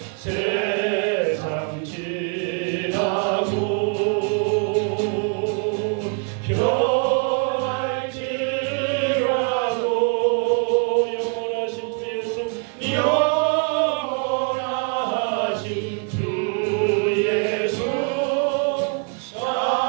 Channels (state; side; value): quieter; left; 39.6 dB